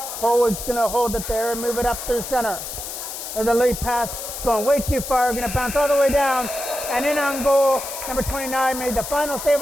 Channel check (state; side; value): noise; left; hiss, 8 dB below the sound